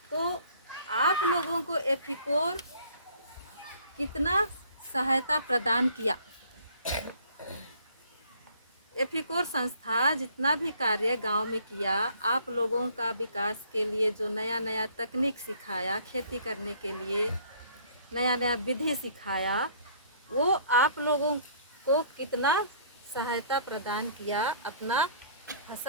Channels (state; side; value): inverted; both; correlation -0.57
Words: तो आप लोगों को एथिकोर कितना सहायता प्रदान किया? एथिकोर संस्था जितना भी कार्य गांव में किया, आप लोगों का विकास के लिए जो नया नया तकनीक सिखाया, खेती करने के लिए नया नया विधि सिखाया, वो आप लोगों को कितना सहायता प्रदान किया अपना